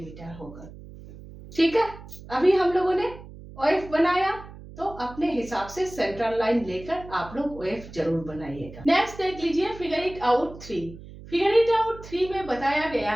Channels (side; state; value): right; noise; hum, 16 dB below the sound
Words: होगा। ठीक है, अभी हम लोगों ने OF बनाया तो अपने हिसाब से सेंट्रल लाइन लेकर आप लोग OF जरूर बनाइएगा। नेक्स्ट देख लीजिए figure it out 3। Figure it out 3 में बताया गया